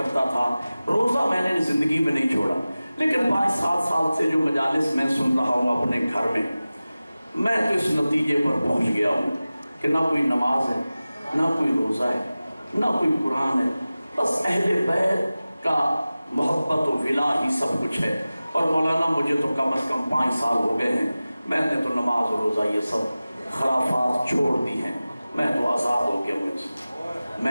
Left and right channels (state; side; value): inverted; both; correlation -0.97